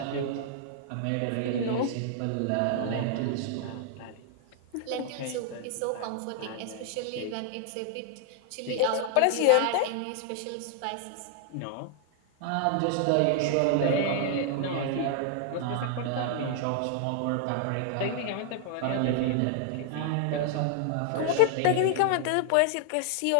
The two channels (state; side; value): different; both; correlation 0.00